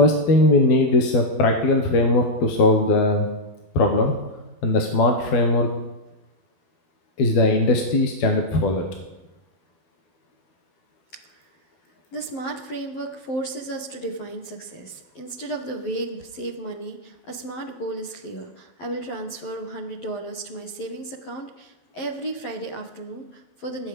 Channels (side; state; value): right; late; 11 ms